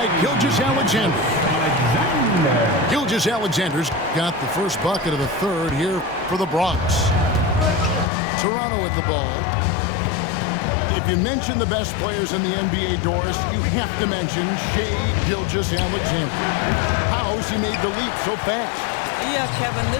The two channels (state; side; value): drops out; right; at 8.1 s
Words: Gilgeous-Alexander. Gilgeous-Alexander's got the first bucket of the third here for the Bronx. Toronto at the ball. If you mention the best players in the NBA, Doris, you have to mention Shai Gilgeous-Alexander. How has he made the leap so fast? Yeah, Kevin,